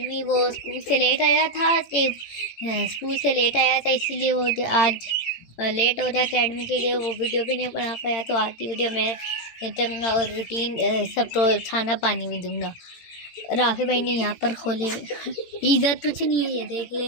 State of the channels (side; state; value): right; late; 18 ms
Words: वो स्कूल से लेट आया था इसीलिए वो आज लेट हो गया एकेडमी के लिए, वो वीडियो भी नहीं बना पाया। तो आज की वीडियो में चलूँगा और रूटीन सब तो खाना पानी भी दूंगा। राफी भाई ने यहाँ पर खोले, इधर कुछ नहीं है, ये देख ले।